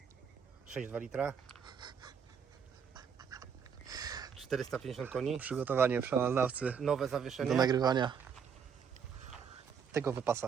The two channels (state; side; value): quieter; left; 6.9 dB